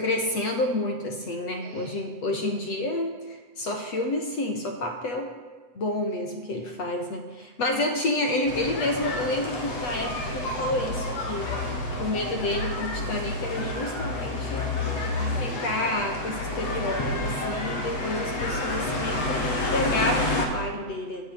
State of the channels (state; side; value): late; right; 8.2 ms